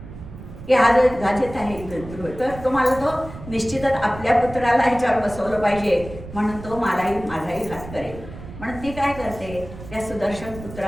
की हा जो गाजेत आहे तर तुम्हाला तो निश्चितच आपल्या पुत्राला ह्याच्यावर बसवलं पाहिजे म्हणून तो माझाही घात करेल. म्हणून ती काय करते त्या सुदर्शन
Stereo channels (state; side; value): noise; right; rumble, 14 dB below the sound